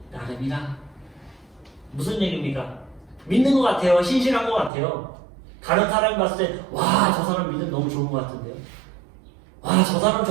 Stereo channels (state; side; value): drops out; left; at 4.7 s